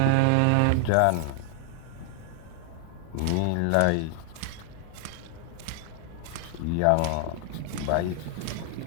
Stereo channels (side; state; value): both; different; correlation 0.00